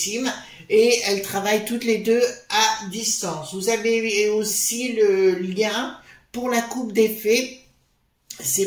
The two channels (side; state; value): both; identical; correlation 1.00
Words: et elles travaillent toutes les deux à distance. Vous avez aussi le lien pour la coupe des fées.